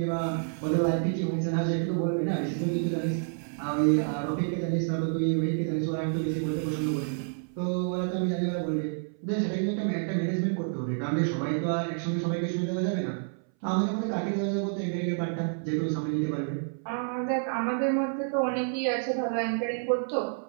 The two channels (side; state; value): left; silent; 59 dB below the other